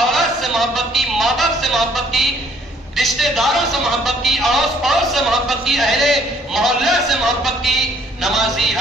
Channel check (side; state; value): both; normal; correlation 0.62